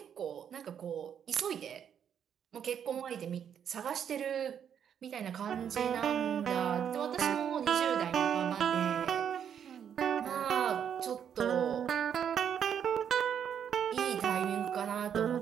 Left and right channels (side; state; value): left; quieter; 8.5 dB